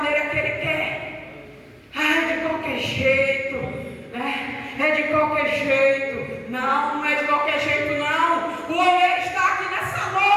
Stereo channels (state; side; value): identical; both; correlation 1.00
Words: que ele quer. Ah, é de qualquer jeito, né? É de qualquer jeito. Não, não é de qualquer jeito, não. O oleiro está aqui nessa